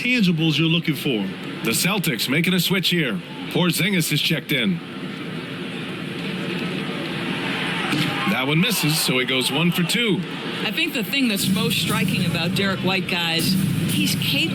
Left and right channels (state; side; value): identical; both; correlation 1.00